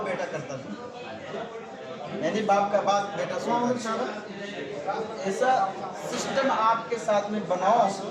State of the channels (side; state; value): both; identical; correlation 1.00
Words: बेटा करता है, यानी बाप का बात बेटा सुनता है। ऐसा सिस्टम आपके साथ में बनाओ